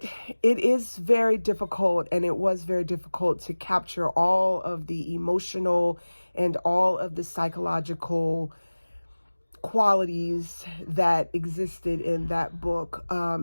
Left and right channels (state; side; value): inverted; both; correlation -1.00